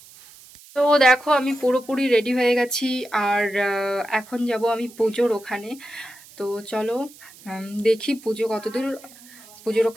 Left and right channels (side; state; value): right; noise; hiss, 22 dB below the sound